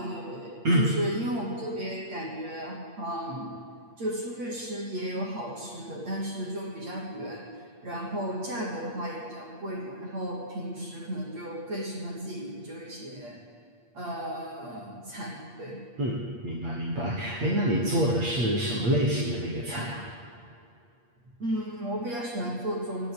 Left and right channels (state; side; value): late; left; 8.5 ms